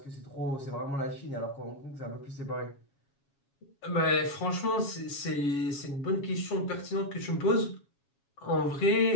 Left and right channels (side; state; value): right; late; 7.2 ms